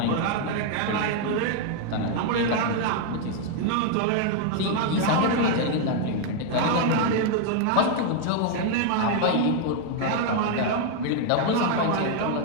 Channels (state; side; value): different; both; correlation 0.00